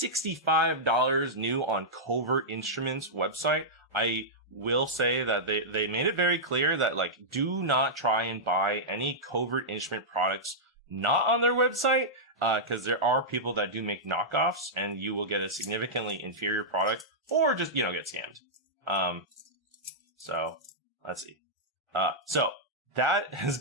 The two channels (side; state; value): both; normal; correlation -0.11